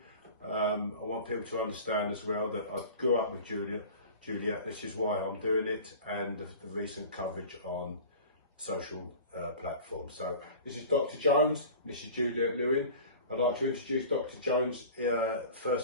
I want people to understand as well that I grew up with Juliette, this is why I'm doing it, and the recent coverage on social platforms. So this is Dr. Jones, this is Juliette Lewin. I'd like to introduce Dr. Jones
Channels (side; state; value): both; inverted; correlation -0.39